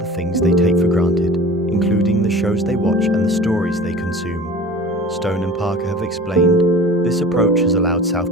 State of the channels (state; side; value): normal; both; correlation 0.40